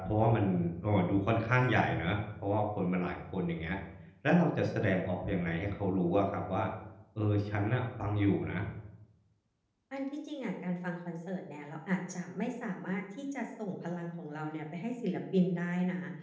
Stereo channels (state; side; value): identical; both; correlation 1.00